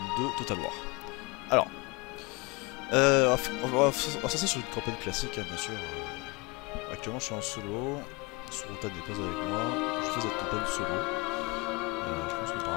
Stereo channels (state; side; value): quieter; right; 26.4 dB